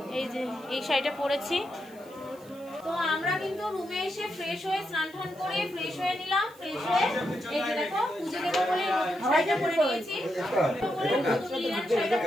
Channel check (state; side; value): noise; right; hiss, 26 dB below the sound